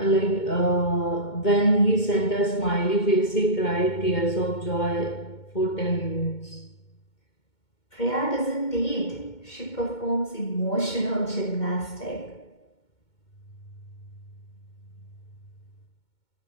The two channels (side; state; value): right; late; 2.2 ms